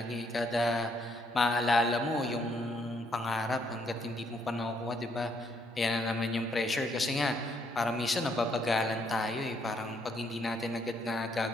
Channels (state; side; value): normal; both; correlation 0.71